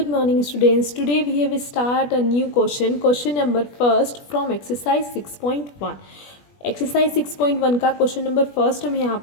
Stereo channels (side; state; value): right; late; 21 ms